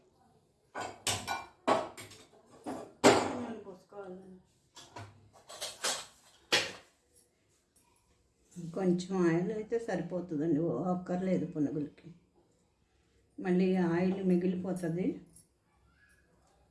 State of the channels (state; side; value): identical; both; correlation 1.00